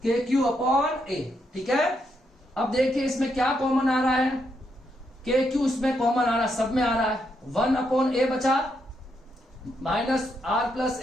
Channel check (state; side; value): normal; both; correlation 0.79